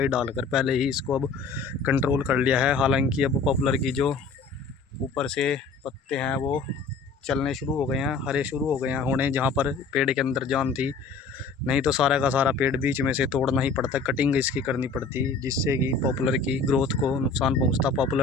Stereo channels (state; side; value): quieter; right; 4.5 dB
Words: डालकर पहले ही इसको अब कंट्रोल कर लिया है। हालांकि अब पॉपुलर की जो ऊपर से पत्ते हैं वो चलने शुरू हो गए हैं, हरे शुरू हो गए हैं होने, जहाँ पर पेड़ के अंदर जान थी। नहीं तो सारा का सारा पेड़ बीच में से तोड़ना ही पड़ता, कटिंग इसकी करनी पड़ती, जिससे कि पॉपुलर की ग्रोथ को नुकसान पहुंचता,